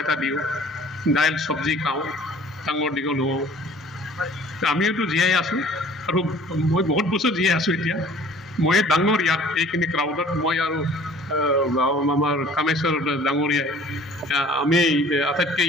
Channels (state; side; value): normal; both; correlation 0.51